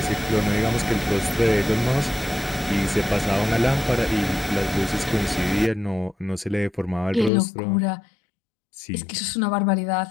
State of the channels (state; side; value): drops out; right; at 7.3 s